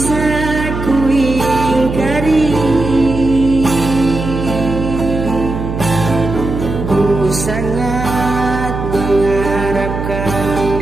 ku ingkari, ku sangat mengharapkan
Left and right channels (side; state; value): right; noise; hum, 5 dB below the sound